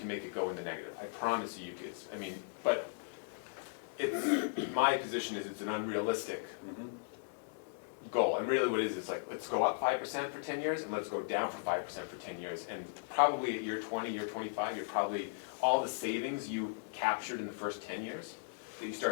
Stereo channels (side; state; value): right; silent; digital silence